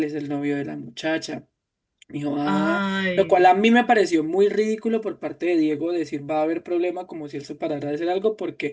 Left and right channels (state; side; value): identical; both; correlation 1.00